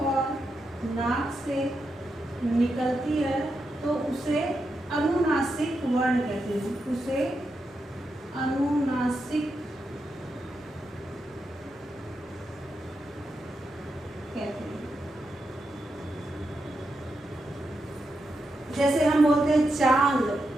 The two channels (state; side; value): normal; both; correlation 0.86